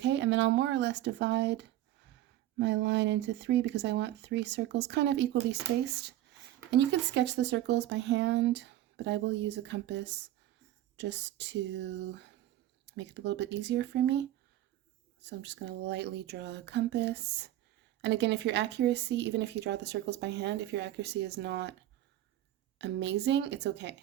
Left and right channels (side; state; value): left; quieter; 13.8 dB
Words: And then I'll more or less divide my line into 3 because I want 3 circles kind of equally spaced. And you can sketch the circles by hand, but I will use a compass just to make it a little bit easier for me. So I'm just going to lightly draw a compass. And again, if your accuracy, even if you draw the circles by hand, if your accuracy is not amazing, it's okay.